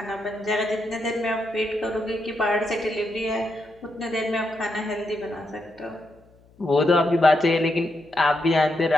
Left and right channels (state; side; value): noise; left; hum, 29 dB below the sound